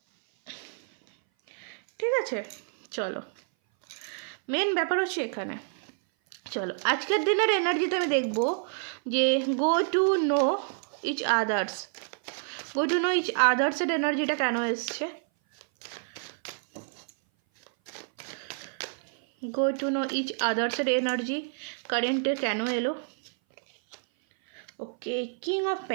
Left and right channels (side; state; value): left; silent; 57 dB below the other